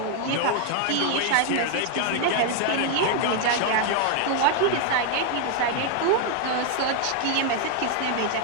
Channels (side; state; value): both; different; correlation 0.00